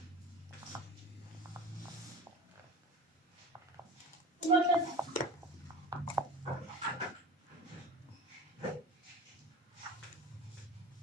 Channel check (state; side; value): normal; both; correlation 0.33